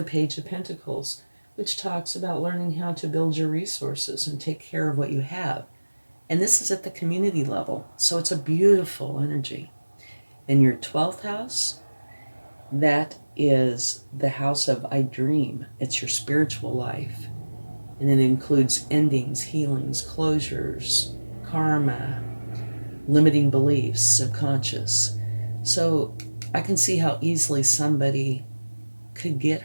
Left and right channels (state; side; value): inverted; both; correlation -1.00